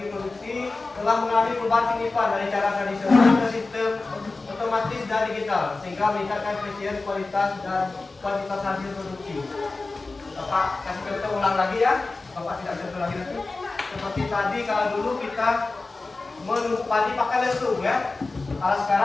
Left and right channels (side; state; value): right; quieter; 3.5 dB